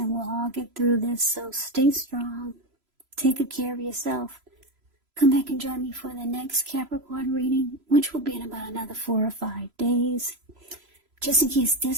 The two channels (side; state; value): left; late; 3.0 ms